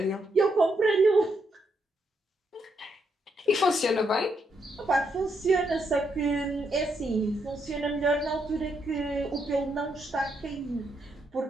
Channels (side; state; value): both; normal; correlation 0.78